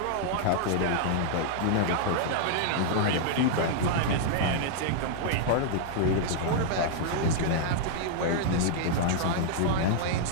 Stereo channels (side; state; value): both; different; correlation -0.01